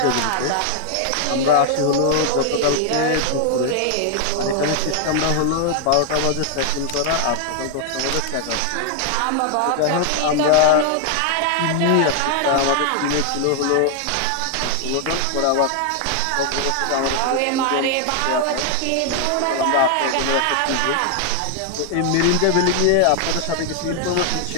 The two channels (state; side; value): different; both; correlation 0.00